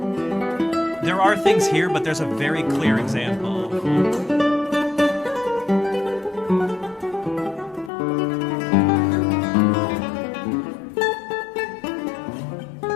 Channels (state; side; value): drops out; right; at 7.9 s